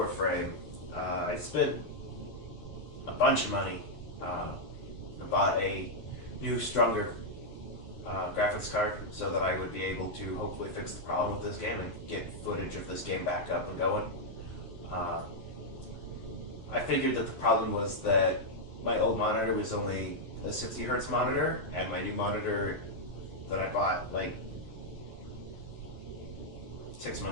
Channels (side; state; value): right; late; 12 ms